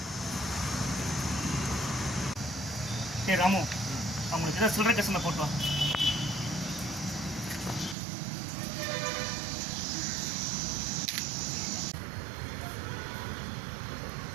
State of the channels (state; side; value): drops out; left; at 8.0 s